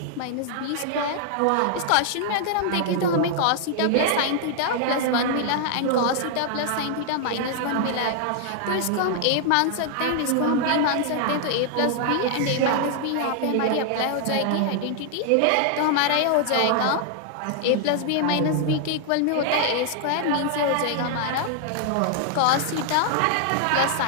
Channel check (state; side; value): different; both; correlation 0.00